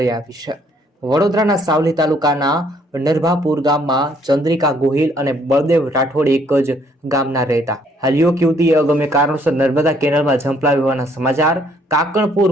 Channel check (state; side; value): normal; both; correlation 0.65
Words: આવી છે। વડોદરાના સાવલી તાલુકાના નરભાપુર ગામમાં ચંદ્રિકા ગોહિલ અને બળદેવ રાઠોડ એક જ ગામના રહેતા। હાલ યુવક યુવતીએ અગમ્ય કારણોસર નર્મદા કેનાલમાં ઝંપલાવી હોવાના સમાચાર।